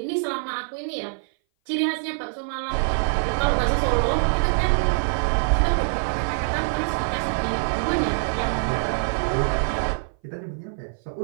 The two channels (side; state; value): left; silent; 58 dB below the other